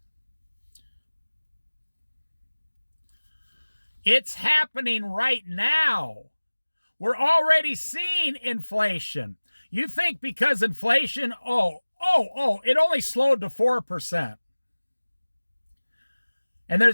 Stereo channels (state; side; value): inverted; both; correlation -1.00